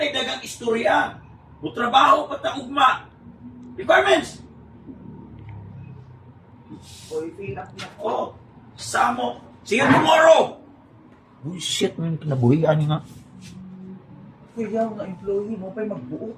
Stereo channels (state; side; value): identical; both; correlation 1.00